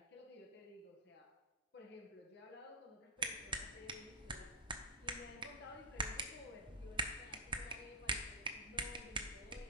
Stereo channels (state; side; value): normal; both; correlation -0.10